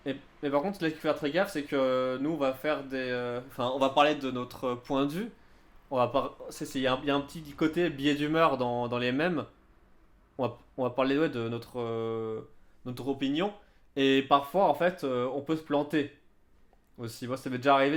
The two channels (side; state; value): both; identical; correlation 1.00